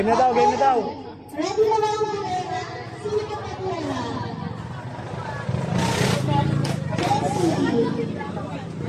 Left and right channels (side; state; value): both; identical; correlation 1.00